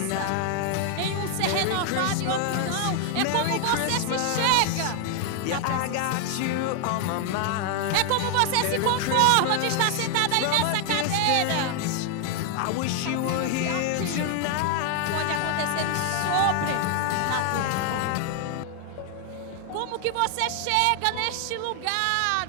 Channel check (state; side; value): different; both; correlation 0.00